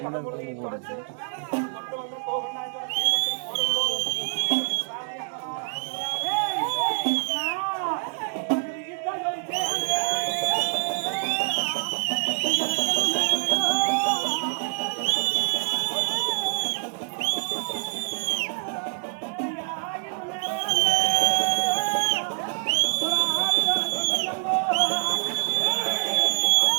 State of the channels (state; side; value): silent; left; 61 dB below the other